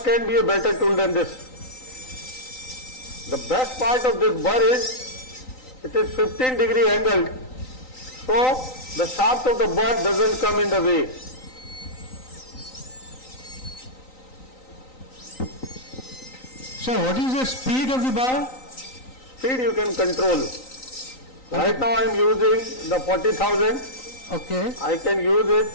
can be a better tool than this? The best part of this bar is it is 15 degree angled, so the shaft of the bar doesn't come in the way. So what is the speed of the bar? Speed you can control. Right now I am using the 40,000. Okay. I can use it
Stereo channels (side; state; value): right; late; 3.9 ms